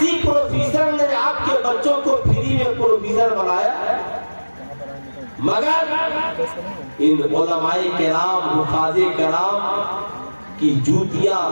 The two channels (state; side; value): inverted; both; correlation -1.00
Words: پروفیسر نے آپ کے بچوں کو فری میں پروفیسر بنایا؟ مگر ان علماء کرام, حفاظ کرام کی جوتیاں